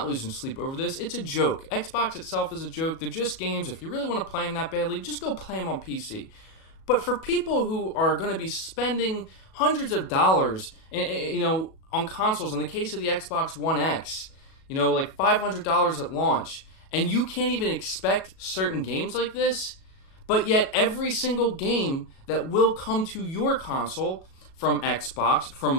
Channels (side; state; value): right; late; 37 ms